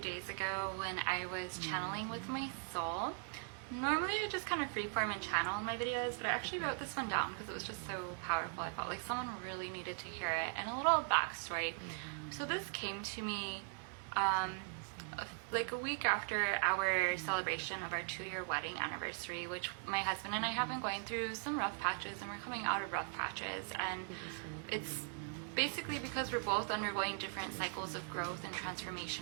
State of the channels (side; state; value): left; silent; 51 dB below the other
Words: ago when I was channeling with my soul. Normally I just kind of freeform and channel in my videos, but I actually wrote this one down because it was just so powerful. I felt like someone really needed to hear it. And a little backstory. So this came to me like a week after our celebration of our 2-year wedding anniversary, which my husband and I have been going through some rough patches, and we're coming out of rough patches, and it's basically because we're both undergoing different cycles of growth and